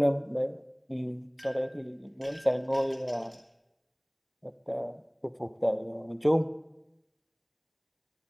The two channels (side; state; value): both; identical; correlation 1.00